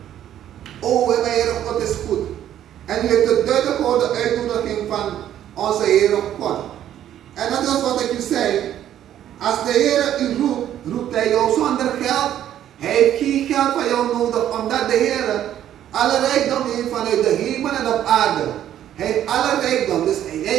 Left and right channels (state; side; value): quieter; left; 11.2 dB